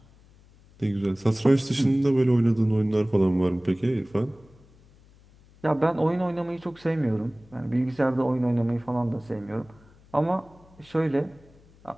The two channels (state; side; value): noise; left; hum, 27 dB below the sound